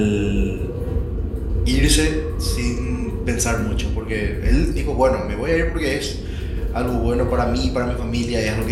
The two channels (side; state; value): both; identical; correlation 1.00